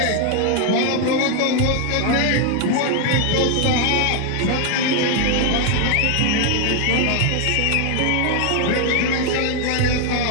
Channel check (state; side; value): different; both; correlation 0.00